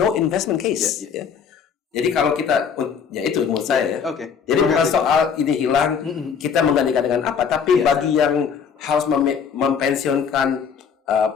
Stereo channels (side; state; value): right; quieter; 6.8 dB